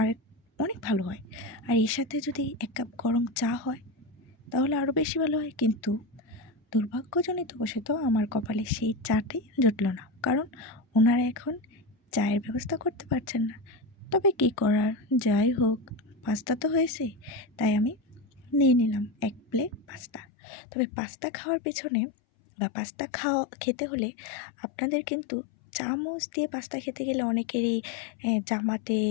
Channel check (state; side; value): drops out; right; at 20.2 s